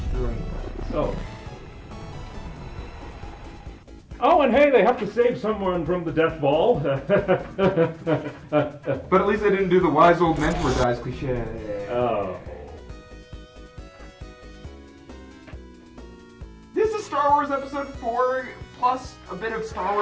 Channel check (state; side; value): identical; both; correlation 1.00